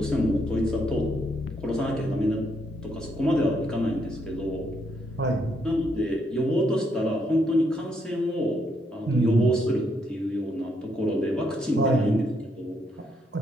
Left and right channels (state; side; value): normal; both; correlation 0.75